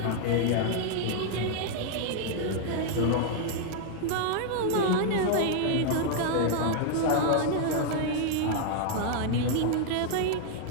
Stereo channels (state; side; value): different; both; correlation 0.00